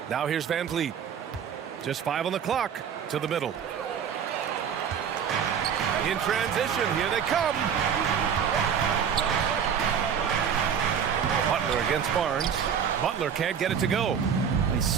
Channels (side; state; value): left; quieter; 7.7 dB